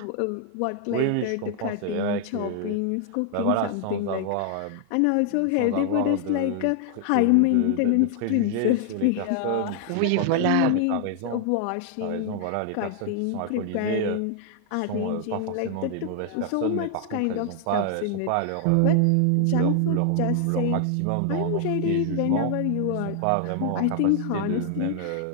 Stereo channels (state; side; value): different; both; correlation 0.00